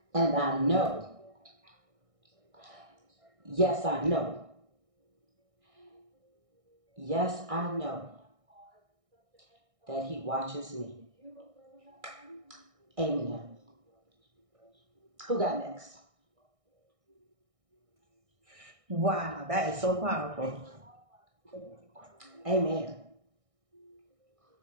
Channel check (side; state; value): left; late; 1.6 ms